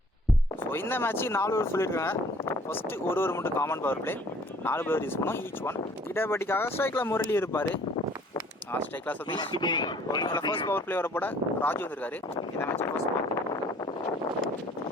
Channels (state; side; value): normal; both; correlation 0.55